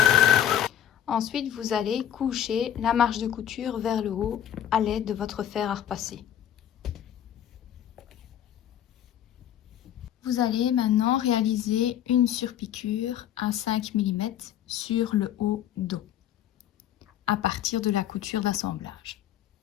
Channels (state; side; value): quieter; right; 10.6 dB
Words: Ensuite, vous allez coucher la marche de couture vers le haut à l'aide de votre fer à repasser. Vous allez maintenant réaliser une surpiqûre à 5 mm sur le haut dos à partir de la couture d'assemblage.